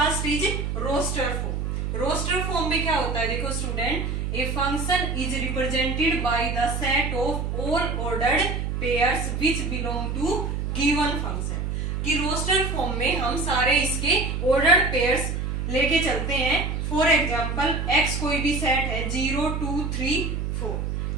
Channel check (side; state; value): right; noise; hum, 2 dB below the sound